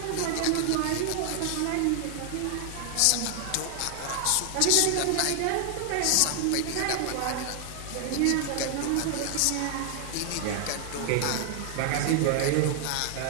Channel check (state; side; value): different; both; correlation 0.00